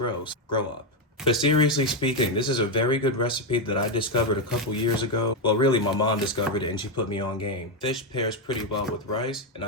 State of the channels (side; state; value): both; normal; correlation 0.05